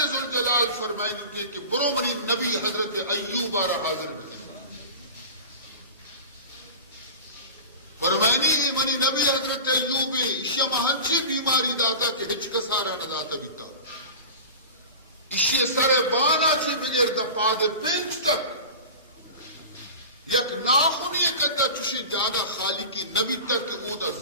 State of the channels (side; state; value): both; inverted; correlation -0.33